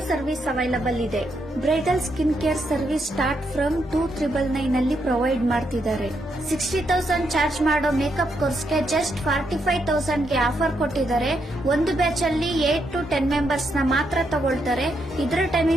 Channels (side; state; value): both; normal; correlation 0.79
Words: service available ಇದೆ. Bridal skin care service start from 2,999 ಅಲ್ಲಿ provide ಮಾಡ್ತಿದ್ದಾರೆ. 60,000 charge ಮಾಡೋ makeup ಕೋರ್ಸ್ಗೆ just 45,000 ಗೆ offer ಕೊಟ್ಟಿದ್ದಾರೆ. ಒಂದು ಬ್ಯಾಚ್ ಅಲ್ಲಿ 8 to 10 ಮೆಂಬರ್ಸ್ ನ ಮಾತ್ರ ತಗೊಳ್ತಾರೆ. ಇದರ